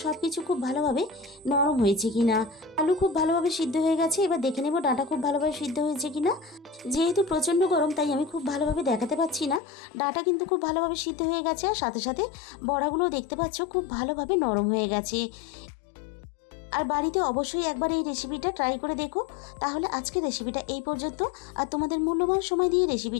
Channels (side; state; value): right; drops out; at 9.6 s